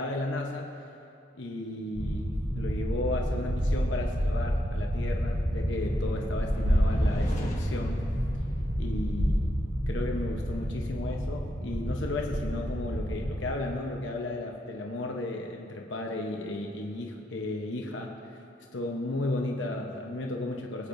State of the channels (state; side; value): normal; both; correlation 0.80